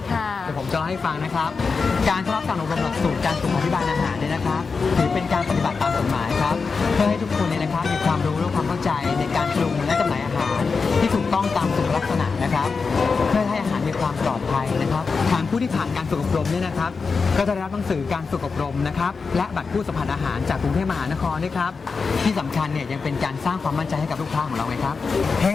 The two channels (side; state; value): right; quieter; 4.8 dB